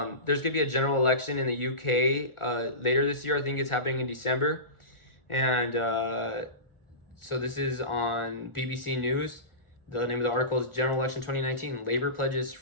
going to be a general election in the UK later this year. I think it's happening in December. And so this is on BBC News. The name of the article is General Election 2019. Labour pledges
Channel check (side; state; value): right; late; 1.4 ms